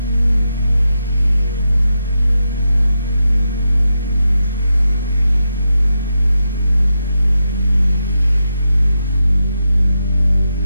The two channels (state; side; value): inverted; both; correlation -0.86